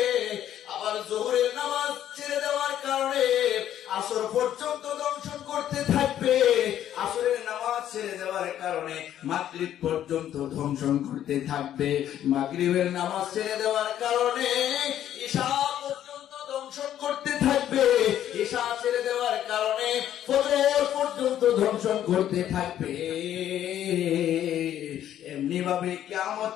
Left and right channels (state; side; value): quieter; right; 11.2 dB